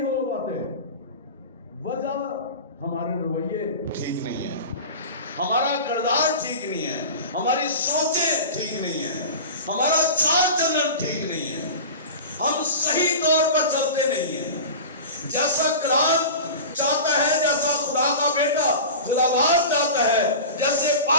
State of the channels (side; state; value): both; inverted; correlation -0.32